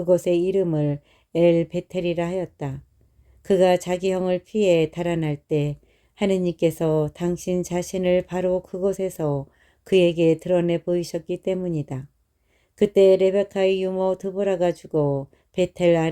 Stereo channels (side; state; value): both; identical; correlation 1.00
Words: 이름을 엘 베텔이라 하였다. 그가 자기 형을 피해 달아날 때 하느님께서 당신 자신을 바로 그곳에서 그에게 드러내 보이셨기 때문이다. 그때 레베카의 유모 드보라가 죽어 베텔